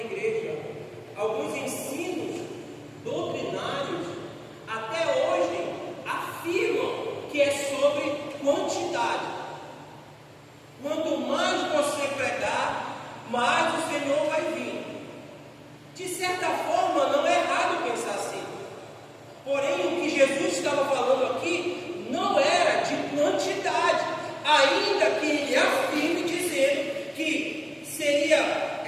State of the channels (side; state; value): both; identical; correlation 1.00